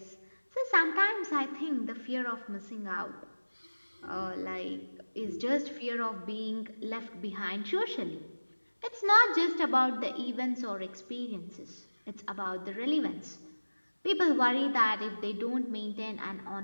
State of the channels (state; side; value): inverted; both; correlation -1.00